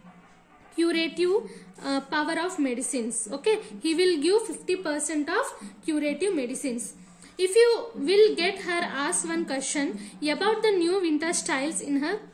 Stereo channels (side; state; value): both; identical; correlation 1.00